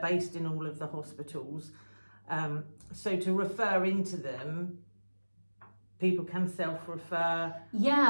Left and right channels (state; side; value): inverted; both; correlation -1.00